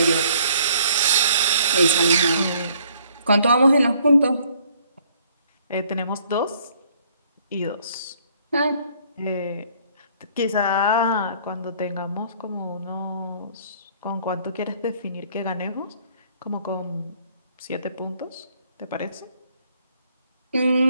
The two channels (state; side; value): inverted; both; correlation -0.62